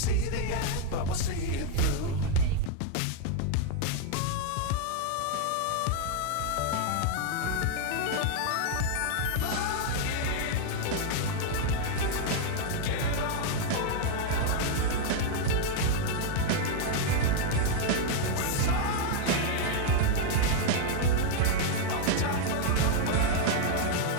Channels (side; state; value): both; different; correlation 0.00